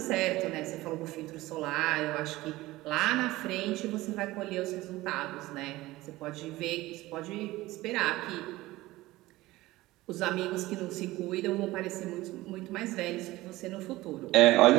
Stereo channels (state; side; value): quieter; left; 18.4 dB